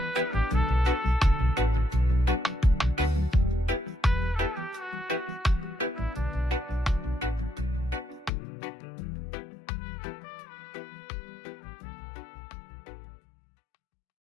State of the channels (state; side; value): drops out; right; at 8.3 s